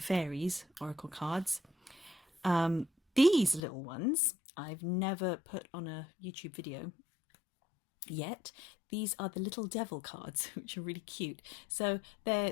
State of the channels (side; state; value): right; drops out; at 3.6 s